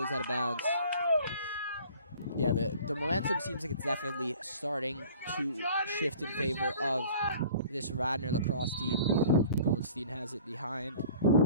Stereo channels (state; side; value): inverted; both; correlation -0.48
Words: out of bounds. Yeah, the momentum seems like it's definitely starting to shift in favor of this Radnor lacrosse team. Goldstein has it behind.